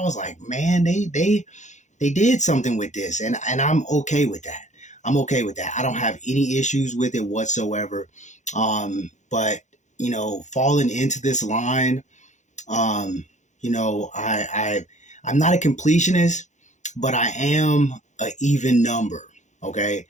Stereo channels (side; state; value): right; late; 0.35 ms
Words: was like, man, they did something with this, and I'm okay with that. I'm okay with that. I don't have any issues with it whatsoever. But falling into this line, I'm not a completionist, but I am an even number. Okay,